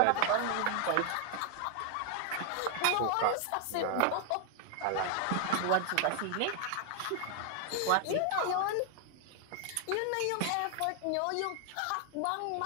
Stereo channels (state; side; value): different; both; correlation 0.00